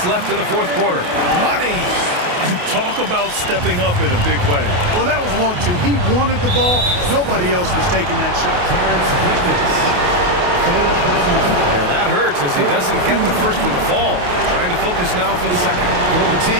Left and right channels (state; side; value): late; left; 28 ms